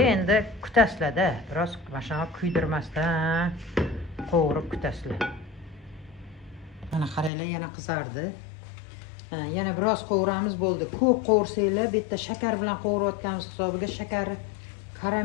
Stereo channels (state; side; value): drops out; right; at 7.3 s